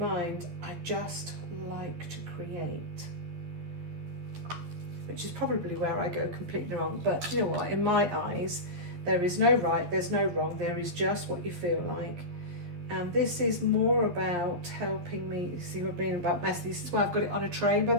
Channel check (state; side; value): late; left; 12 ms